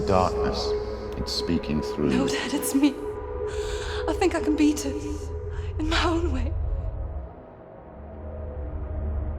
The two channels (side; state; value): both; identical; correlation 1.00